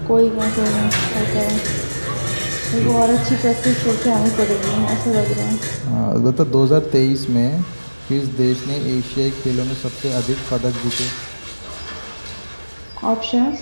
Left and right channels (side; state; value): both; inverted; correlation -1.00